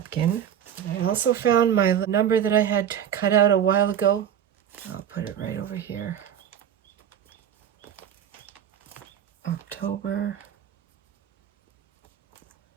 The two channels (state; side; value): quieter; left; 9.5 dB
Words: I also found my number that I had cut out a while ago. I'll put it right over here. October